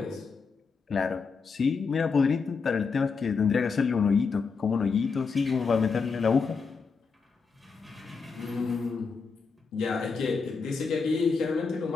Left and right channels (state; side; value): quieter; right; 5.0 dB